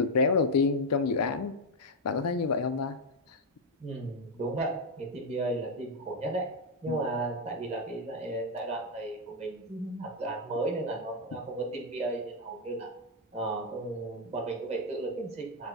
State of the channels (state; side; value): normal; both; correlation 0.01